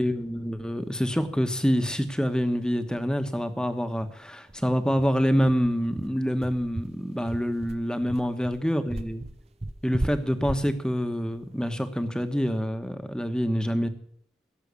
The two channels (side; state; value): both; normal; correlation 0.97